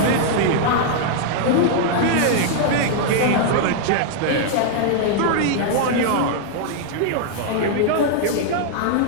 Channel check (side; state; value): both; different; correlation -0.01